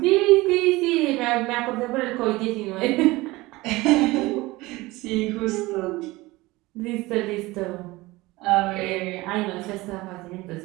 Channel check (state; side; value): quieter; left; 20.5 dB